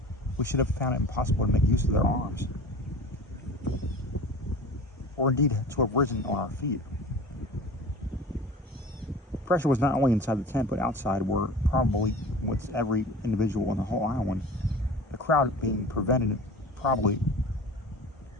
we should have found it impossible to make use of their arms, or indeed to have risen on our feet. Pressure was not only inside the tent, but outside, where probably with every individual on the whole island, the crowd being prevented probably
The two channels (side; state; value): both; normal; correlation 0.38